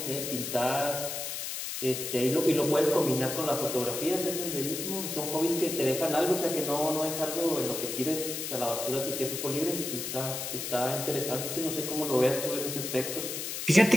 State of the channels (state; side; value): noise; left; hiss, 5 dB below the sound